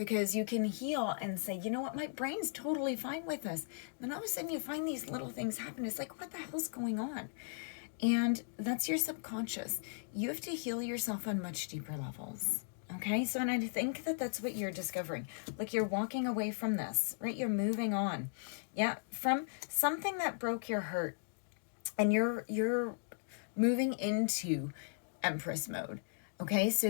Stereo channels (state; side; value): silent; right; digital silence